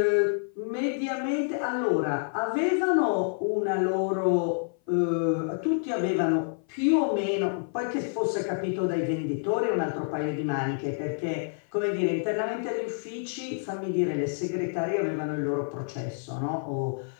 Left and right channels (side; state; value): right; silent; 56 dB below the other